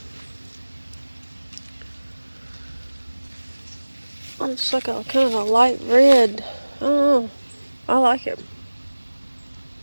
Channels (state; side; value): inverted; both; correlation -1.00